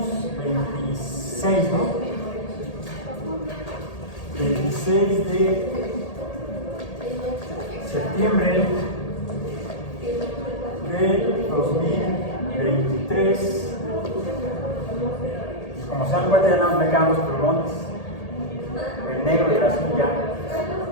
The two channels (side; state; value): right; late; 1.8 ms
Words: 26, ¿no? 26 de septiembre de 2023. Como se dan cuenta, ya no me quedan los plumones, el negro y el azul ya.